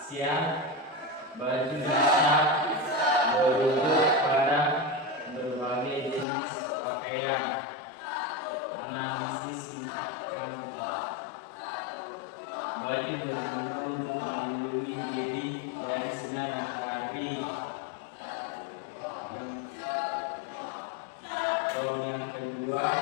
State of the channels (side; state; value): right; drops out; at 6.2 s